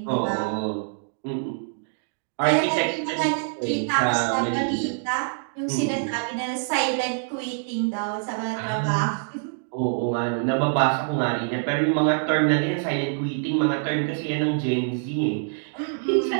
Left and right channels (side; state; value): left; silent; digital silence